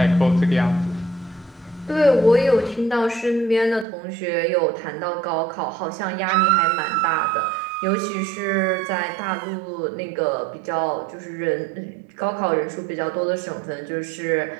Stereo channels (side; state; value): left; drops out; at 3.9 s